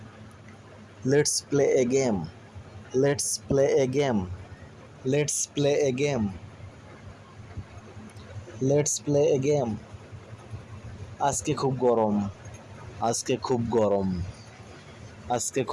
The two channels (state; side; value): identical; both; correlation 1.00